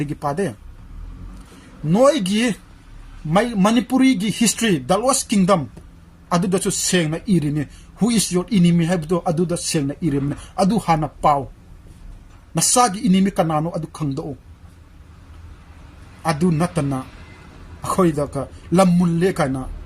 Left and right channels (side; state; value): both; identical; correlation 1.00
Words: पादे नोयगी मणिपुरी की हिस्ट्री द लॉस्ट किंगडम अदुदसु सेंगना इरिने हु इज योर एनिमी हैबदो अदुदा सेंगना इरिने अदु हाना पाव नसागी एनिमी कनानो अदु खंगदो अदु नतना अखोइदा का लमुल्ले काना